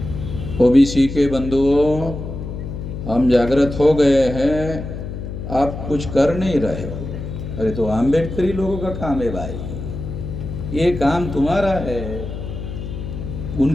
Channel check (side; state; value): left; noise; hum, 7 dB below the sound